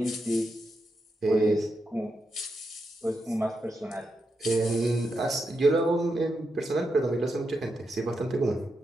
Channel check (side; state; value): both; normal; correlation 0.85